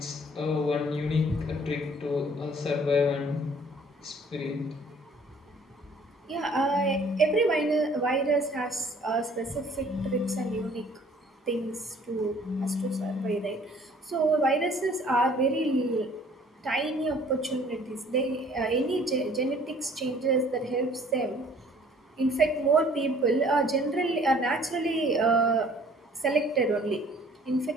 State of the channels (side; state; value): both; normal; correlation 0.55